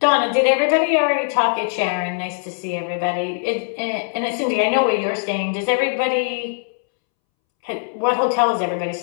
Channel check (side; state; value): right; silent; 65 dB below the other